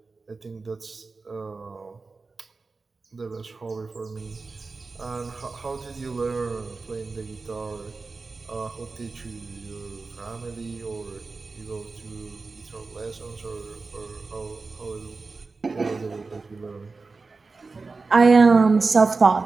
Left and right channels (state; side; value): quieter; left; 4.0 dB